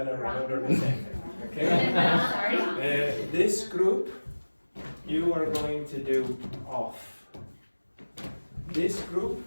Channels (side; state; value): both; inverted; correlation -1.00